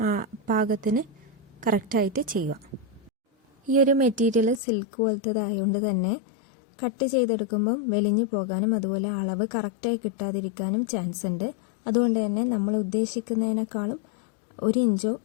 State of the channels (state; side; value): drops out; right; at 4.6 s